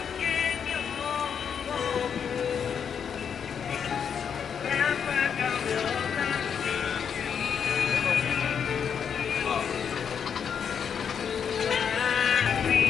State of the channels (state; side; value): quieter; right; 7.4 dB